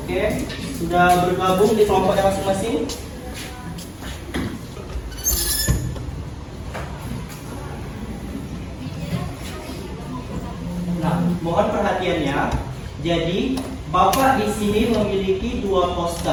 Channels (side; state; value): both; identical; correlation 1.00